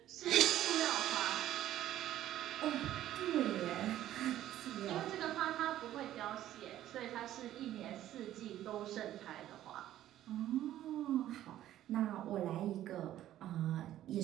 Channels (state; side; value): quieter; left; 12.9 dB